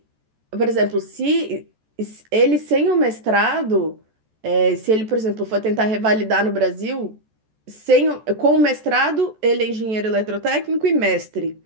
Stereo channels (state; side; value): late; left; 14 ms